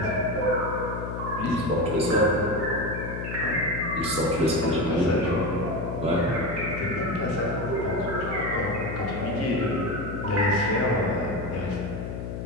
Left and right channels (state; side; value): noise; left; hum, 6 dB below the sound